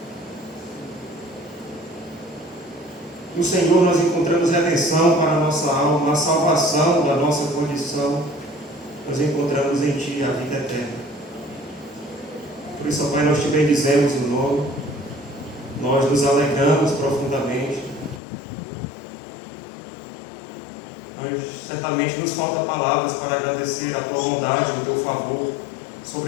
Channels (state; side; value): drops out; right; at 18.2 s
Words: No Senhor nós encontramos redenção para a nossa alma, a salvação da nossa condição, nós encontramos em Ti a vida eterna. Por isso, ó Pai, nós te bendizemos o nome, nós nos alegramos profundamente. Nós, certamente nos falta palavras para agradecer a tua bondade e o teu favor